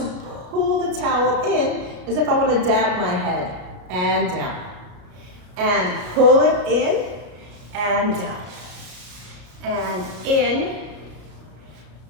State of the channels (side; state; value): left; late; 33 ms